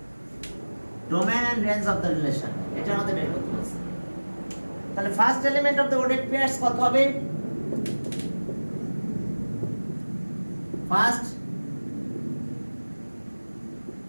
Domain and range of the relation এটা আমাদের বের করতে বলছে। তাহলে first element of the ordered pairs কত হবে? First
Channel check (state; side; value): inverted; both; correlation -1.00